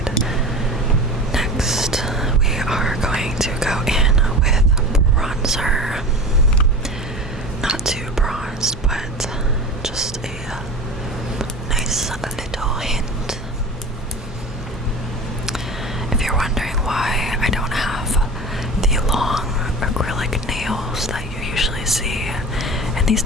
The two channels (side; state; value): both; normal; correlation 0.34